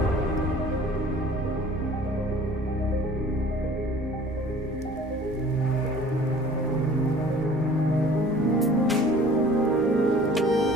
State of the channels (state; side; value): normal; both; correlation 0.49